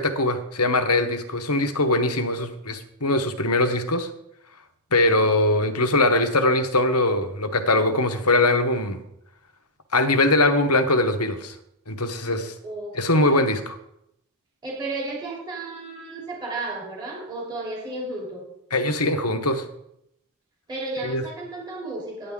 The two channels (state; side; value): normal; both; correlation -0.19